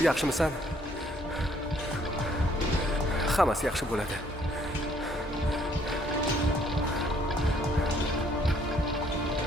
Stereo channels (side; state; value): both; normal; correlation 0.64